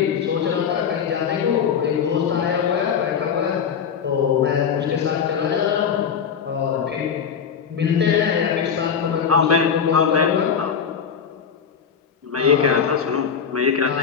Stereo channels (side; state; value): right; quieter; 7.1 dB